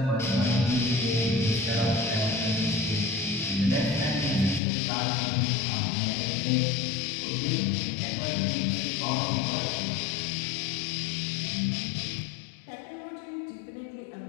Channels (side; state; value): right; drops out; at 4.6 s